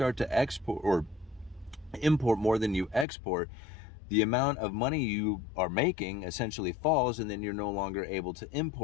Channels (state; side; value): drops out; right; at 3.1 s